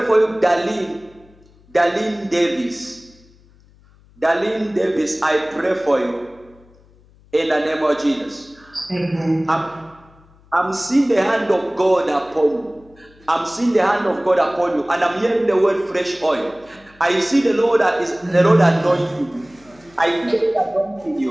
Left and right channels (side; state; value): left; noise; hum, 28 dB below the sound